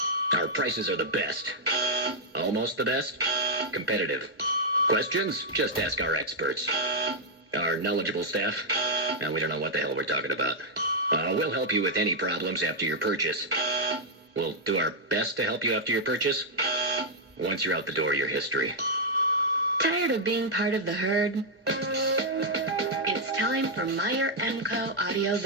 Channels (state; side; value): normal; both; correlation -0.04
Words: Our prices are the best. Almost the best. Competitive. Questions? Just ask our experts. Our knowledgeable staff? Now, we don't know what the hell we're talking about. We'll help you with any problems after your purchase. We'll do our best to help you after your purchase. Once you're out the door, your history. Tired of being part of the herd? It's time for Meyer MCO Audio